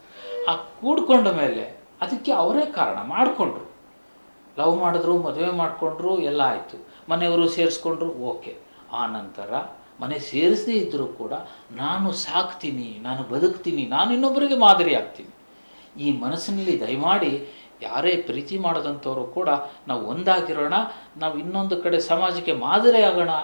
ಆ ಕೂಡ್ಕೊಂಡ ಮೇಲೆ ಅದಕ್ಕೆ ಅವರೇ ಕಾರಣ ಮಾಡಿಕೊಂಡ್ರು. ಲವ್ ಮಾಡಿದ್ರು, ಮದುವೆ ಮಾಡಿಕೊಂಡ್ರು, ಎಲ್ಲ ಆಯಿತು, ಮನೆಯವರು ಸೇರಿಸ್ಕೊಂಡ್ರು, ಓಕೆ. ಆ ನಂತರ ಮನೆ ಸೇರಿಸದೇ ಇದ್ದರೂ ಕೂಡ ನಾನು ಸಾಕ್ತೀನಿ, ನಾನು ಬದುಕ್ತೀನಿ, ನಾನು ಇನ್ನೊಬ್ಬರಿಗೆ ಮಾದರಿ ಆಗ್ತೀನಿ. ಈ ಮನಸ್ಸಿನಲ್ಲಿ ದಯಮಾಡಿ ಯಾರೇ ಪ್ರೀತಿ ಮಾಡೋದಂಥವರು ಕೂಡ ನಾವು ಒಂದಾಗಿರೋಣ, ನಾವು ಇನ್ನೊಂದು ಕಡೆ ಸಮಾಜಕ್ಕೆ ಮಾದರಿ ಆಗೋಣ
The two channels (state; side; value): inverted; both; correlation -1.00